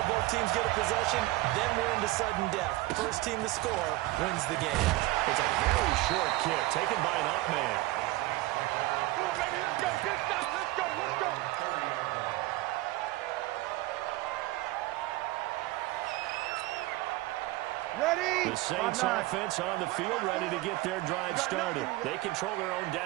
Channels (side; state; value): left; quieter; 18.7 dB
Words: both teams get a possession, then we're into sudden death. First team to score wins the game. It's a very short kick taken by an up man. Let's go. The Saints offense on the field, ready to get their drive started. They control their own